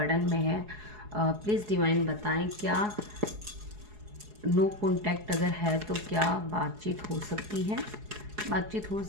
में है। प्लीज़ डिवाइन बताएं क्या नो कॉन्टैक्ट अगर है तो क्या बातचीत हो सकती है, बातचीत हो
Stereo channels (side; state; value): left; late; 4.7 ms